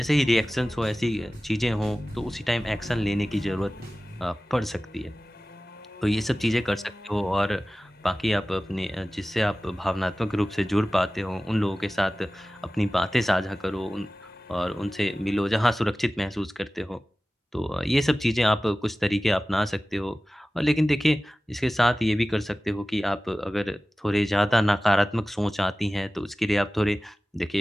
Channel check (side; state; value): both; normal; correlation 0.97